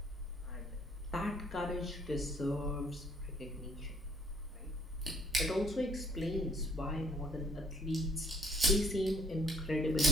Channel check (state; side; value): normal; both; correlation 0.59